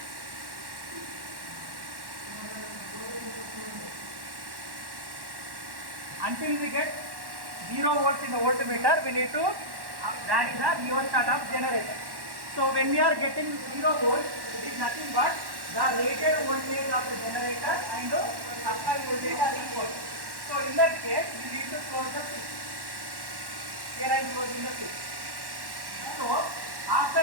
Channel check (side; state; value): left; late; 1.1 ms